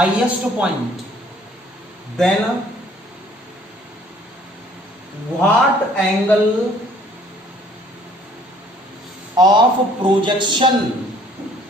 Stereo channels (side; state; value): both; normal; correlation 0.57